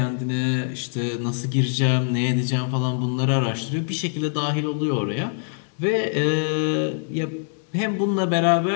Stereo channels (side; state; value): right; silent; digital silence